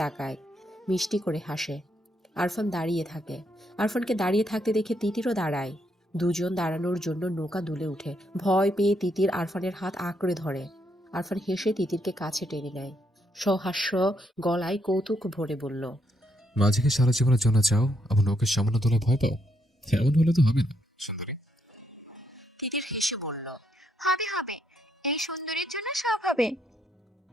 তাকায়, মিষ্টি করে হাসে। আরফান দাঁড়িয়ে থাকে। আরফানকে দাঁড়িয়ে থাকতে দেখে তিতিরও দাঁড়ায়। দুজন দাঁড়ানোর জন্য নৌকা দুলে উঠে। ভয় পেয়ে তিতির আরফানের হাত আঁকড়ে ধরে। আরফান হেসে তিতিরকে কাছে টেনে নেয়, সহাস্য গলায় কৌতুক ভরে বলল, মাঝিকে সারা জীবনের জন্য চাও, আবার নৌকের সামান্য তোলা ভয় পাও? এমন হলে তো হবে না সুন্দরী। তিতির হেসে বলল, হবে হবে, এই সুন্দরীর জন্য সব হবে।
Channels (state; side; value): normal; both; correlation 0.76